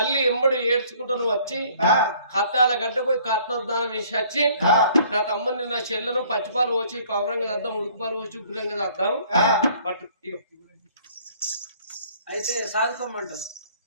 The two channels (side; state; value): both; inverted; correlation -0.57